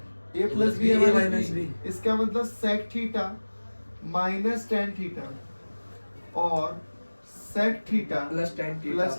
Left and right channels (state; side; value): inverted; both; correlation -1.00